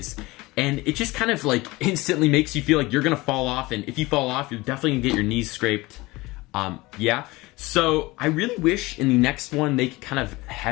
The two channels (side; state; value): right; quieter; 21.4 dB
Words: And it just kind of like instantly makes you feel like you're gonna fall off, and if you fall off, you're definitely gonna get your knees scraped. Yeah. So I really wish in the next one they could kind of